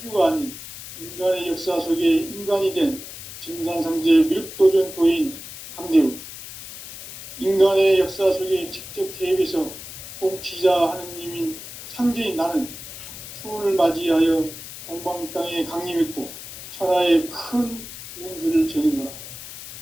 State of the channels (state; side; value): noise; left; hiss, 12 dB below the sound